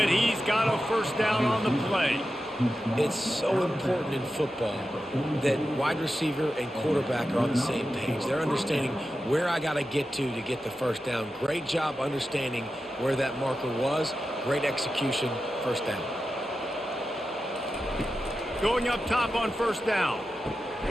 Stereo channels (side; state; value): both; normal; correlation 0.91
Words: he's got a first down on the play. It's so important in football that wide receiver and quarterback are on the same page. They're understanding where I got to get the first down. Great job understanding where that marker was. Great execution, first down. Going up top on first down.